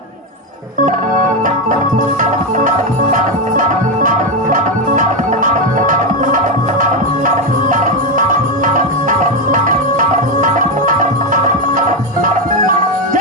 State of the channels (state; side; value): normal; both; correlation 0.09